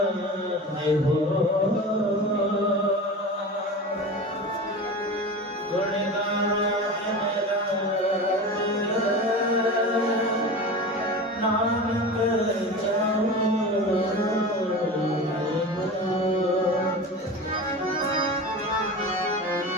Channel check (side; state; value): both; normal; correlation 0.30